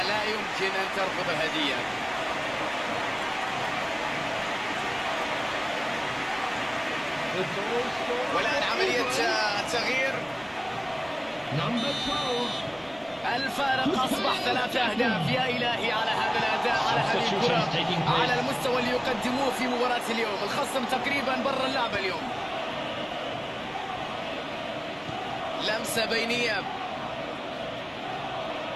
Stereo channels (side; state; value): both; identical; correlation 1.00